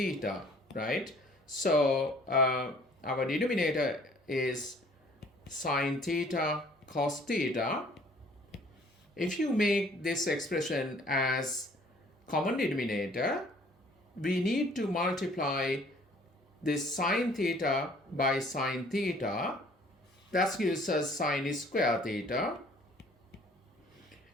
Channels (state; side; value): normal; both; correlation 0.56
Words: right? So our denominator is sine theta cos theta. If you make this expression as common denominator, we need to multiply this sine theta by sine theta. That gives us sine square theta.